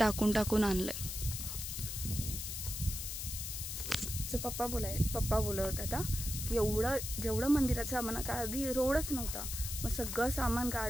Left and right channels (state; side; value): noise; left; hiss, 5 dB below the sound